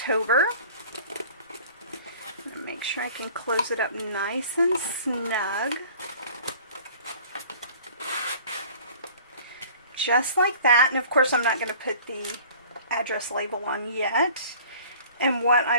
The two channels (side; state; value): both; inverted; correlation -0.47